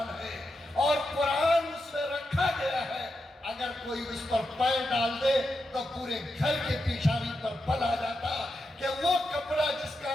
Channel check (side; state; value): both; normal; correlation 0.87